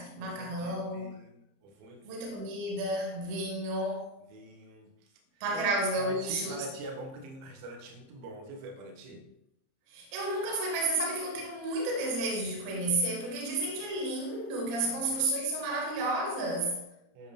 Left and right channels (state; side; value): late; left; 30 ms